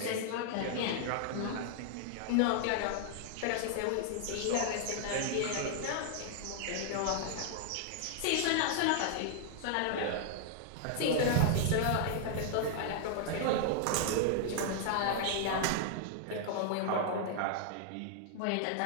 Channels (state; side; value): different; both; correlation -0.01